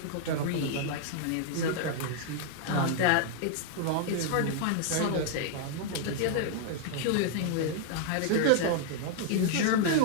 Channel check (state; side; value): different; both; correlation 0.00